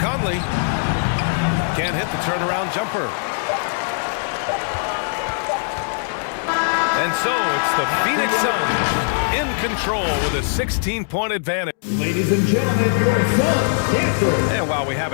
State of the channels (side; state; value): right; silent; digital silence